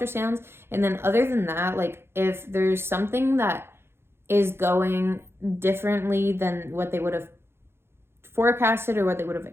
And then other than that, like if there's something that is going differently than what they would have forecasted or what they would have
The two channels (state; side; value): late; left; 0.12 ms